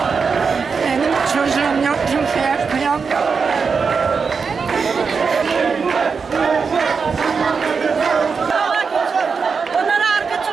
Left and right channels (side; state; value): left; quieter; 5.4 dB